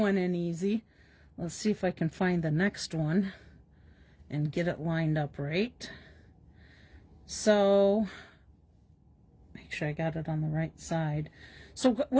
in easy. Let's see if I can find the next one and get it lined up right. So, make sure I got it on the right side. So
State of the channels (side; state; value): both; identical; correlation 1.00